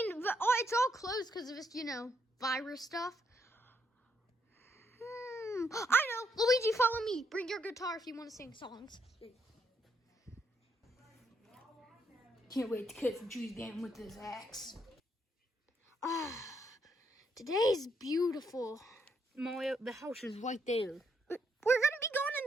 mean, it's all closed because of this, virus stuff. I know. Luigi, follow me. Bring your guitar if you want to sing songs. Can't wait to cut some trees again with this axe. Today's beautiful. Mario, the house is right there. We're going to be going in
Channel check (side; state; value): both; normal; correlation 0.75